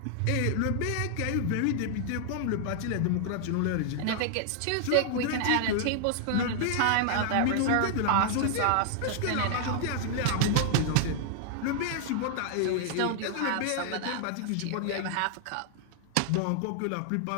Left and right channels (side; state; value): both; different; correlation 0.00